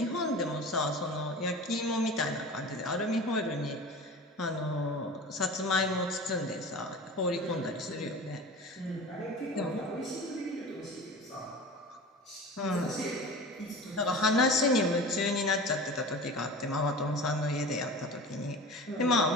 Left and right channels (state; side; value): normal; both; correlation 0.35